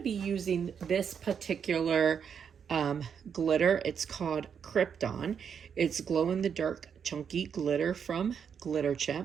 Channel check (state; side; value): quieter; left; 7.3 dB